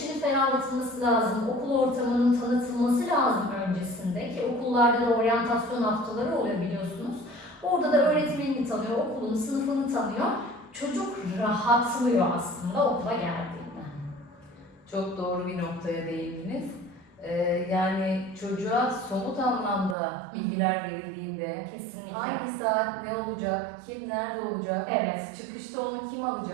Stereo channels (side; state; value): left; drops out; at 20.0 s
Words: ferahlatılması lazım, okul ortamının tanıtılması lazım öncesinde ki okullarda da oryantasyon haftaları oluyor biliyorsunuz. Orada da öğretmenini tanıyor, okulun sınıfını tanıyor. Çocuk rahatlıyor aslında okula geldiğinde. Çok doğru bir noktaya değindiniz. Yani çocuğa somut anlamda bilgiler verildiğinde Kesinlikle. hangi saat ne olacak, kim nerede olacak, Evet. çıkışta onu kim